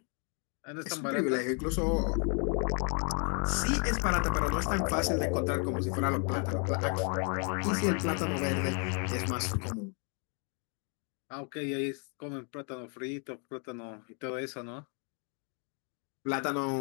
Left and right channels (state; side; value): quieter; right; 39.5 dB